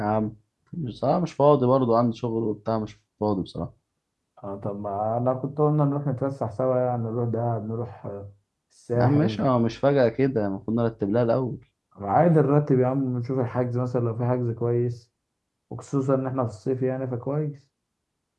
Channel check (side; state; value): both; identical; correlation 1.00